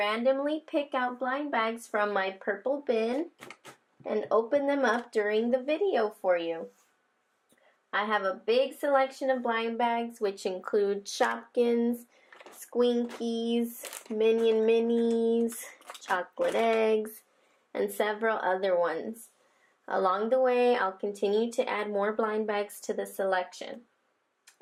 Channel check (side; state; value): both; identical; correlation 1.00